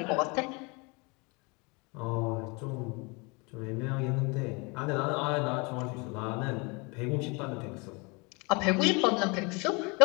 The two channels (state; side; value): quieter; right; 29.1 dB